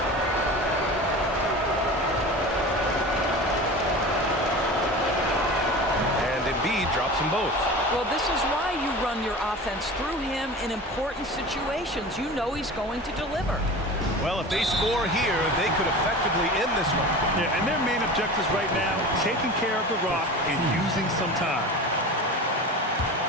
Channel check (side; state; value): both; normal; correlation 0.34